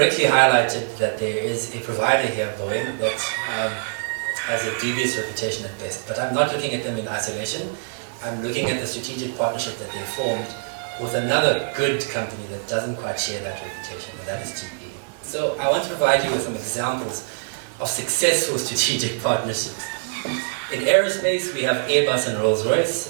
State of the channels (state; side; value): silent; left; 58 dB below the other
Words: highlighted that there is a provider here, Boeing, that has a dubious reputation at best. But I'm not looking at them in isolation. I'm looking at the strategic partnership that they formed with another good company that doesn't quite share that reputation, and that is GE. So I want to provide you with some examples of successful strategic partnerships. In aerospace, we have Airbus and